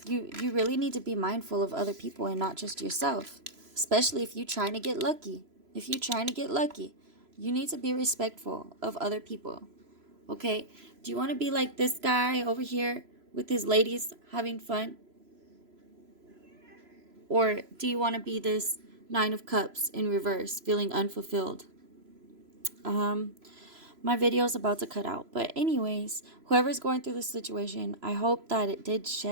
you really need to be mindful of other people and not just yourself, especially if you're trying to get lucky. If you're trying to get lucky, you need to be respectful of other people. Okay? Do you want to be like this guy over here with his ladies having fun? Or do you want to be this 9 of Cups in reverse, feeling unfulfilled? My video is about to cut out. But anyways, whoever's going through this situation, I hope that it did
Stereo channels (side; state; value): left; late; 3.0 ms